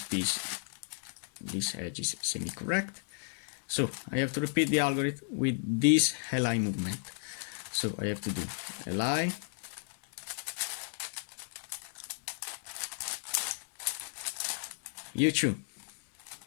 piece, this edge is semi-correct. So I have to repeat the algorithm with this Li movement. So I have to do Li, U2,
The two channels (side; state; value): right; silent; digital silence